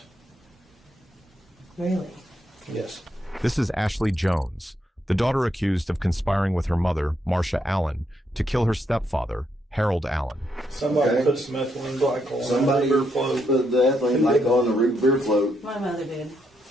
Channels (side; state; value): both; normal; correlation 0.78